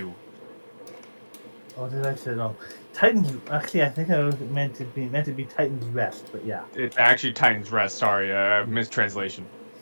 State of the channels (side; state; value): both; inverted; correlation -1.00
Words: Oh, did I say it wrong? Titan's. Actually, I think it was meant to be Titan's Rest, but yeah. It's actually Titan's Rest. Sorry, mistranslation.